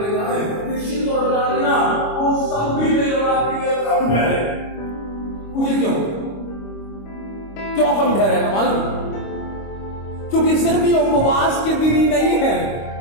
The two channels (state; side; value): late; right; 25 ms